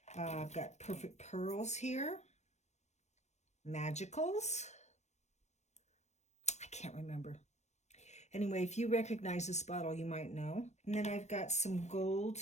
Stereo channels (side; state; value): right; late; 0.33 ms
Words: I've got Perfect Pearls here. Magicals. I can't remember. Anyway, if you recognize this bottle, you might know. And then I've got some gold